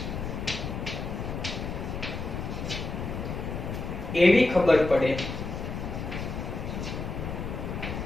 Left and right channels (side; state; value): left; noise; rumble, 5 dB below the sound